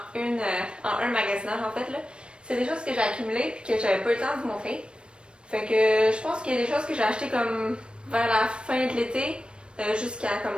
en un magasinage, en fait. Là. C'est des choses que j'ai accumulées et que j'avais pas eu le temps de vous montrer. Fait que je pense qu'il y a des choses que j'ai achetées comme vers la fin de l'été jusqu'à comme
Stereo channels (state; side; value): late; left; 0.056 ms